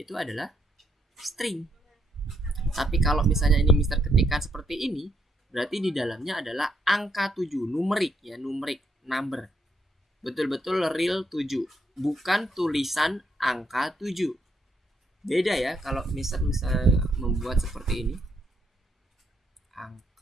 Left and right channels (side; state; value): both; normal; correlation 0.75